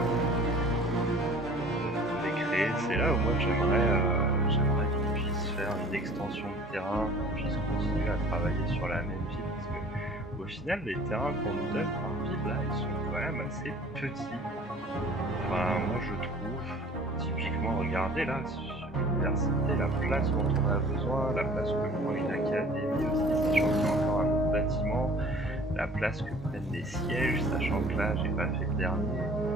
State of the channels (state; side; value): normal; both; correlation 0.48